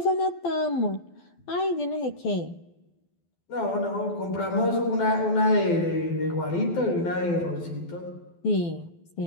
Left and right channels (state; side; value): late; right; 12 ms